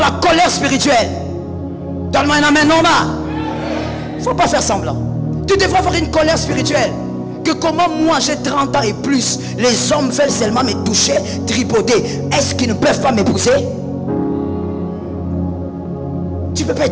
la colère spirituelle. Donne-moi un amen normal. Il ne faut pas faire semblant. Tu devrais avoir une colère spirituelle. Que comment moi j'ai 30 ans et plus, les hommes veulent seulement me toucher, tripoter. Est-ce qu'ils ne peuvent pas m'épouser? Tu ne peux pas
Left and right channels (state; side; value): identical; both; correlation 1.00